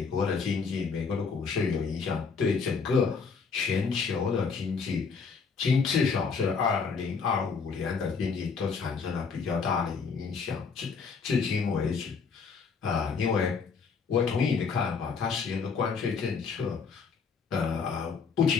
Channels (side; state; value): right; quieter; 5.4 dB